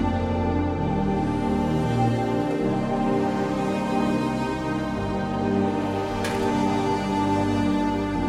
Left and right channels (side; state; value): both; identical; correlation 1.00